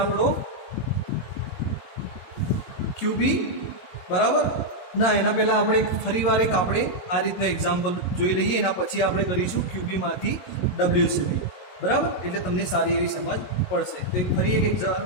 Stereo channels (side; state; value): right; late; 22 ms